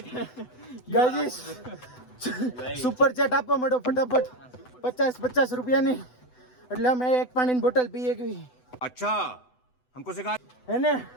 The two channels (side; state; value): right; late; 8.0 ms